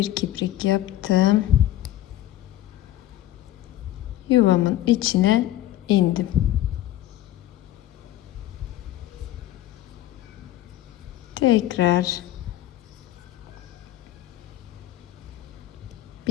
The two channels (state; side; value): quieter; right; 14.0 dB